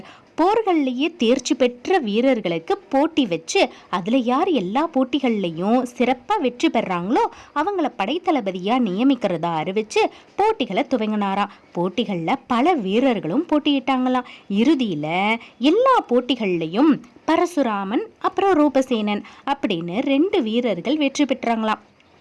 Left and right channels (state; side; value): identical; both; correlation 1.00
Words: போர்கள்லேயே தேர்ச்சி பெற்ற வீரர்களுக்கு போட்டி வச்சு அதில் யார் எல்லா போட்டிகள்லையும் சிறப்பாக வெற்றி பெறாங்களோ அவங்கள படைத்தளபதியாக நியமிக்கிறதா அறிவிச்சு போட்டிகளை துவங்கினாராம். போட்டிகளில் பல வீரர்களும் போட்டியிட்டாங்களாம். இறுதியில் எல்லா போட்டிகள்லையும் பரசுராமன் அப்புறம் ரூபசேனன் அப்படின்னு 2 வீரர்கள் வெற்றி பெற்றாங்களாம்.